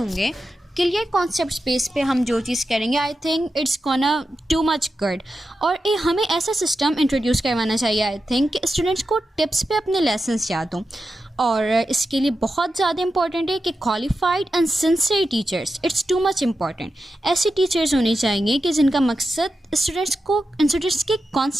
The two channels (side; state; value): both; normal; correlation 0.90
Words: گے، کلیئر کانسیپٹس بیس پہ ہم جو چیز کریں گے، I think it's gonna too much good. اور ہمیں ایسا سسٹم انٹروڈیوس کروانا چاہیے آئی تھنک کہ اسٹوڈنٹس کو ٹپس پہ اپنے لیسنس یاد ہوں. اور اس کے لیے بہت زیادہ امپورٹنٹ ہے کہ qualified and sincere teachers, it's too much important. ایسے ٹیچرز ہونے چاہیے کہ جن کا مقصد اسٹوڈنٹس کے